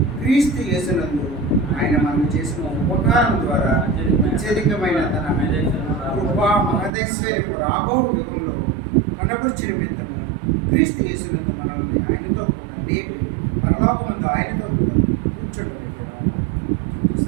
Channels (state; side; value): drops out; left; at 7.0 s